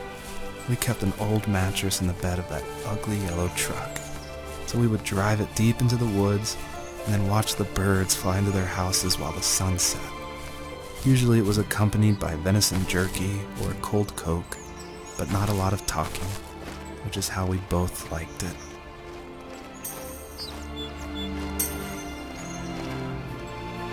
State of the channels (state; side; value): identical; both; correlation 1.00